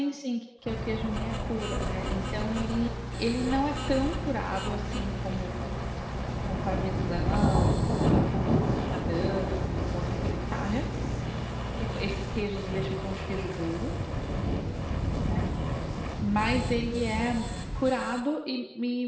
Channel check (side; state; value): both; identical; correlation 1.00